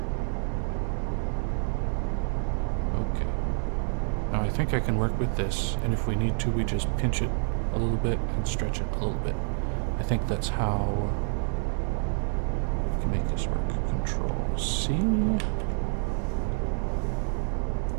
Okay. Now I think I can work with this, and if we need to, we just pinch it a little bit and stretch it a little bit. I think that's how we can make this work. Control C.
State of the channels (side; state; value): left; silent; digital silence